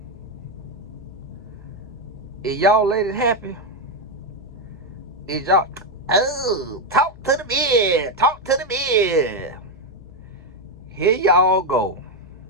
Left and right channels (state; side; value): noise; left; hum, 20 dB below the sound